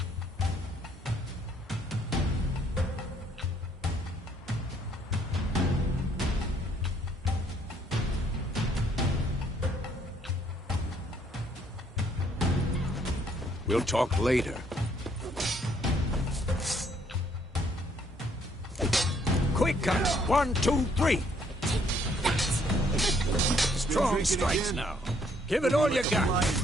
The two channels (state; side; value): normal; both; correlation 0.66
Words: We'll talk later. Quick cut! 1, 2, 3! Strong strikes now. Give it all you got.